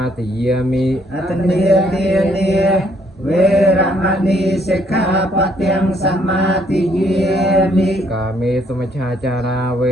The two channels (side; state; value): both; normal; correlation 0.68